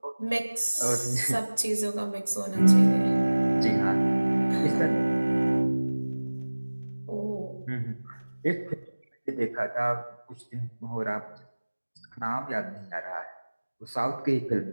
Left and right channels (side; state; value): both; inverted; correlation -1.00